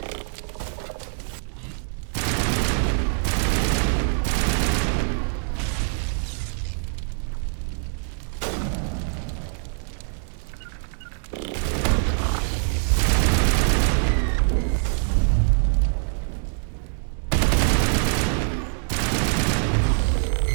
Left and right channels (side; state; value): left; silent; 63 dB below the other